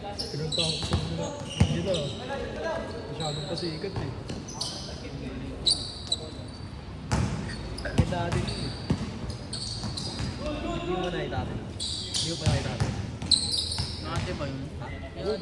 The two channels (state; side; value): identical; both; correlation 1.00